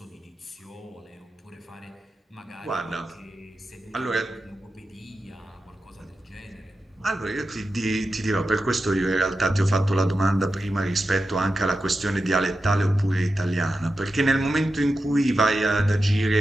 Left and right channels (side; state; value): both; normal; correlation 0.91